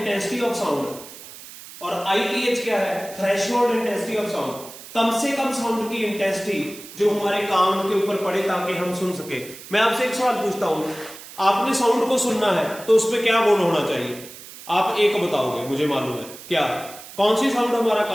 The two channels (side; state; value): right; noise; hiss, 16 dB below the sound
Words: ऑफ साउंड, और ITH क्या है? Threshold intensity of sound. कम से कम साउंड की इंटेंसिटी जो हमारे कान के ऊपर पड़े ताकि हम सुन सके। मैं आपसे एक सवाल पूछता हूं, आपने साउंड को सुनना है तो उसमें क्या गुण होना चाहिए? आप एक बताओगे, मुझे मालूम है। क्या? कौन सी साउंड हमारा